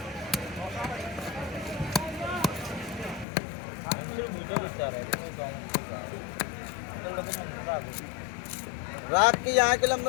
रात के यहाँ के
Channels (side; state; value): right; drops out; at 3.2 s